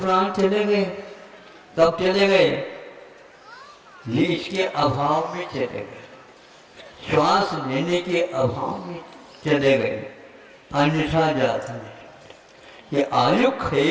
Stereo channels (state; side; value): identical; both; correlation 1.00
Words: चले गए। कब चले गए? ये इसके अभाव में चले गए, श्वास लेने के अभाव में चले गए, अन्यथा जाता है। ये आयु